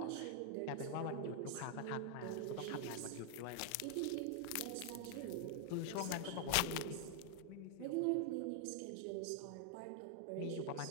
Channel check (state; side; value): different; both; correlation 0.00